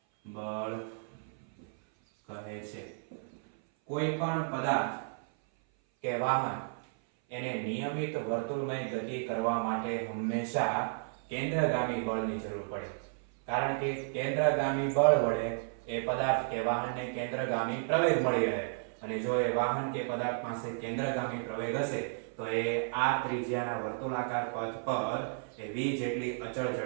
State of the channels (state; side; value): silent; left; 56 dB below the other